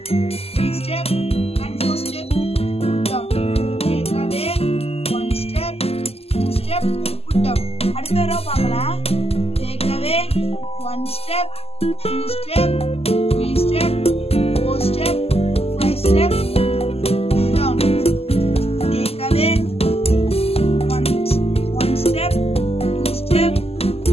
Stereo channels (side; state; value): right; late; 0.29 ms